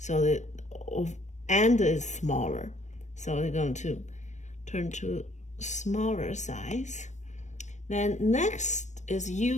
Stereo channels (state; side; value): late; right; 0.34 ms